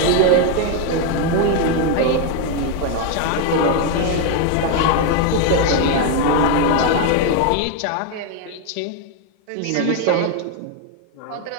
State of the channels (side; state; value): both; different; correlation 0.01